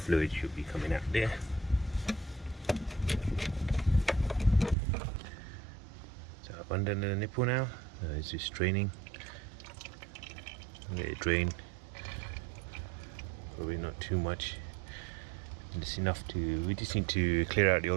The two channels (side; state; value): left; drops out; at 4.8 s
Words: should be coming out there. So I've undone the nipple now. It's just draining. Let it drain. Probably not too much. Just enough to. We just need to clear out the